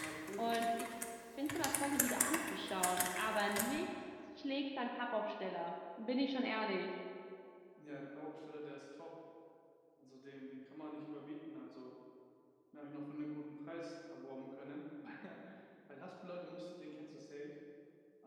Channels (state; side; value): identical; both; correlation 1.00